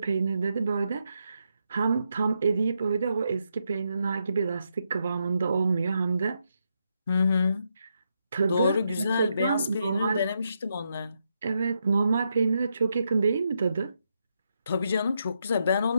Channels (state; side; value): inverted; both; correlation -0.81